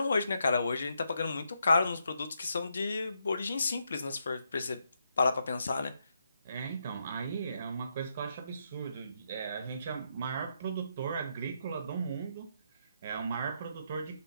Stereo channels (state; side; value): inverted; both; correlation -0.80